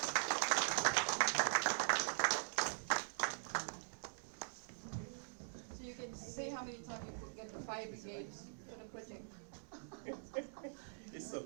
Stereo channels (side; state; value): left; silent; digital silence